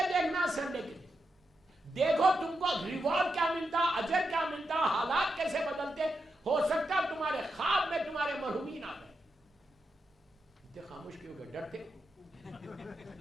دیکھنا سنڈے کے دن, دیکھو تم کو ریوارڈ کیا ملتا, اجر کیا ملتا, حالات کیسے بدلتے. ہو سکتا ہے تمہارے خواب میں تمہارے مرحومین آ گئے. اتنے خاموش کیوں گئے, ڈرتے؟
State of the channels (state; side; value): normal; both; correlation 0.86